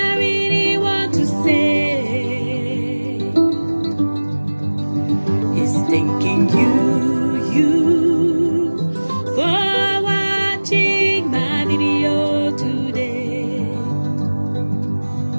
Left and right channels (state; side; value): inverted; both; correlation -1.00